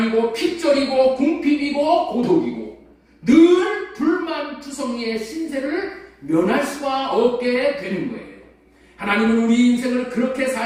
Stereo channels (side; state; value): both; identical; correlation 1.00